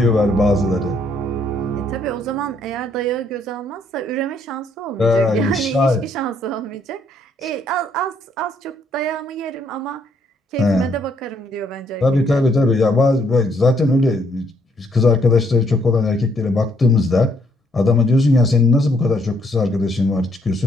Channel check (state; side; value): normal; both; correlation 0.70